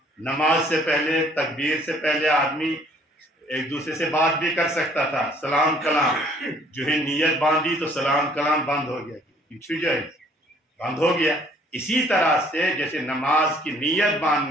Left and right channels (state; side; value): normal; both; correlation 0.59